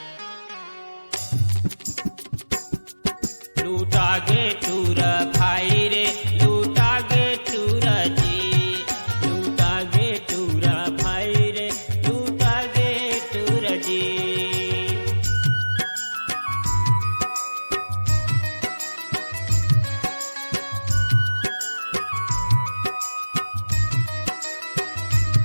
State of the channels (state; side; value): inverted; both; correlation -1.00